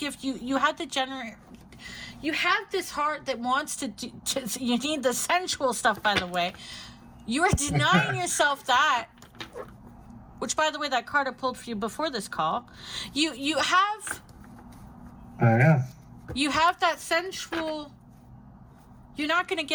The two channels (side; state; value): both; identical; correlation 1.00